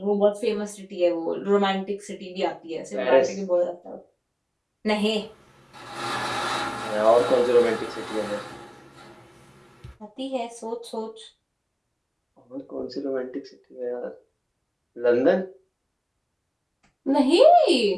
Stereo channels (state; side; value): identical; both; correlation 1.00